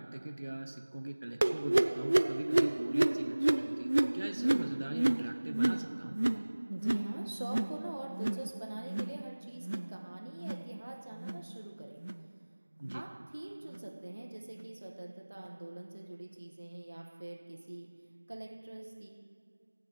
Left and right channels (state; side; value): inverted; both; correlation -1.00